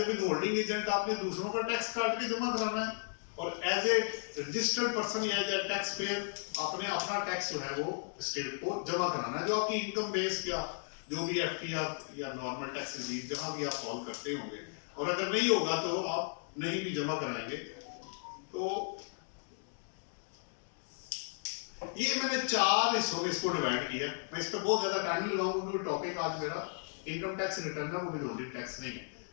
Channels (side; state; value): right; silent; digital silence